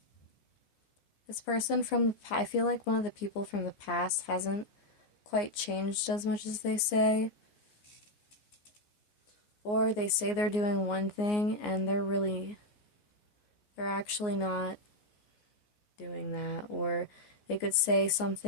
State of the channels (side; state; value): right; late; 14 ms